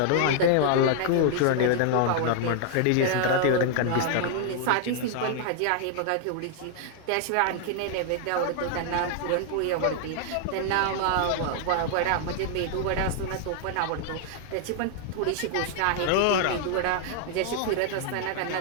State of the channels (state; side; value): different; both; correlation 0.00